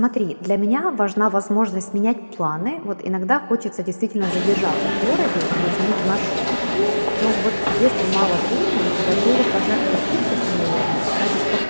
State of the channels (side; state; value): both; inverted; correlation -1.00